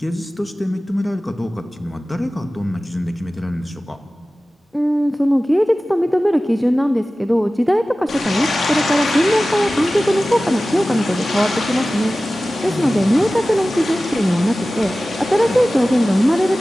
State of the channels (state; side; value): normal; both; correlation 0.96